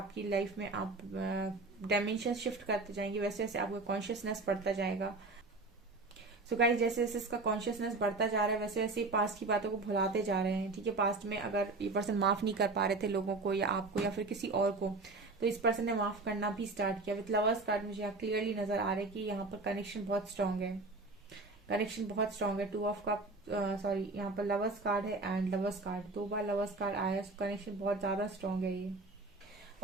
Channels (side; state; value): left; quieter; 3.4 dB